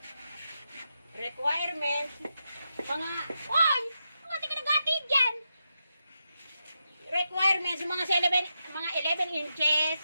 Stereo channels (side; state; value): both; inverted; correlation -0.86